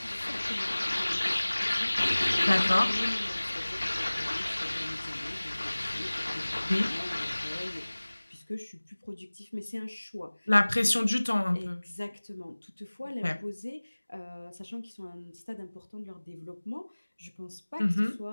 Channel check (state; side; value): inverted; both; correlation -1.00